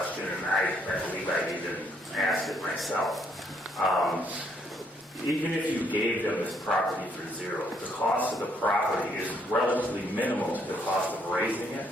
and I believe I need to ask it myself. Even if you gave them this property for 0, the cost of the property is relatively minimal to the cost of raising it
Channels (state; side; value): normal; both; correlation 0.70